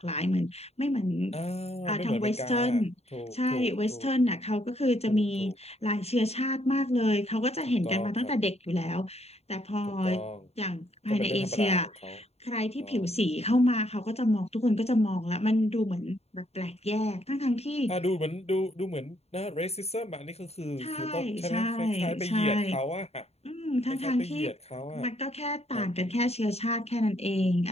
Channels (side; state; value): right; late; 0.30 ms